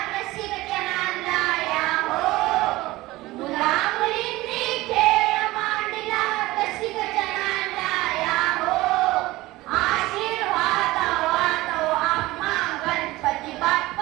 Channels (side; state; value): left; quieter; 18.8 dB